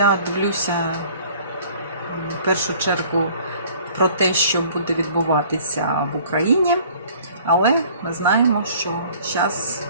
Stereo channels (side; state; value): both; inverted; correlation -0.52